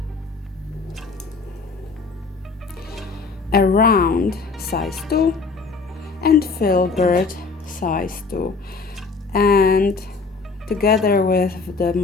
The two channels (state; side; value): quieter; right; 4.3 dB